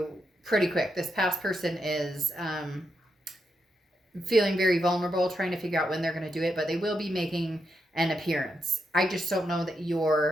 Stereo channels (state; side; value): normal; both; correlation 0.83